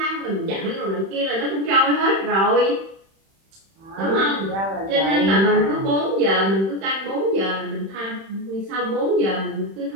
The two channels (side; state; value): left; late; 31 ms